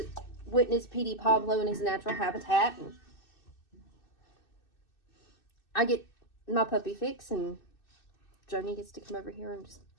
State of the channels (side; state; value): right; late; 2.6 ms